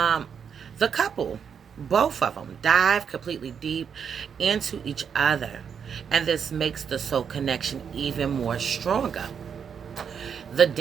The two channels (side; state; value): left; quieter; 7.2 dB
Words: the couple, both of them, dive completely deep into each other, and this makes the soul connection even more stronger. The